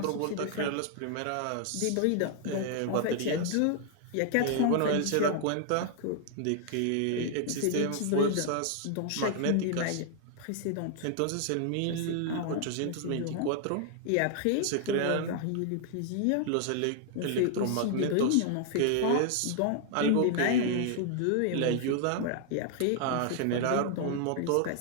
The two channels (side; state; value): both; different; correlation 0.00